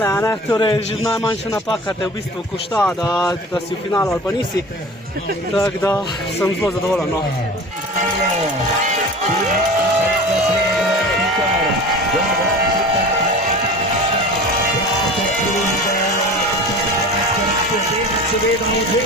a ne? Torej že najmanjša napaka te v bistvu košta, da si v finalu ali pa nisi. Tako da sem zelo zadovoljen, no. Seveda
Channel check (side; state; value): both; normal; correlation 0.38